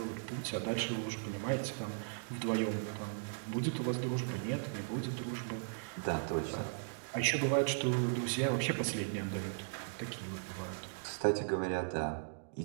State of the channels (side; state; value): left; silent; digital silence